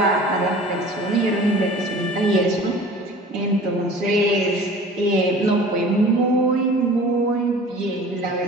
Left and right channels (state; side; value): normal; both; correlation 0.43